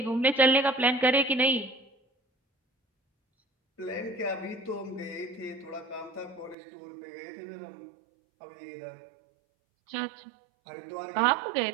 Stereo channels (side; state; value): left; drops out; at 6.6 s